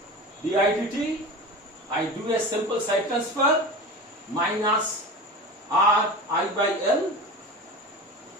di dt, I do a simple side transfer, minus Ri by L.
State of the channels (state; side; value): normal; both; correlation 0.31